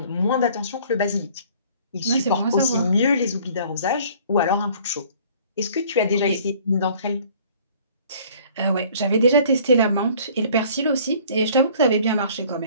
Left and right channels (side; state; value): both; inverted; correlation -0.53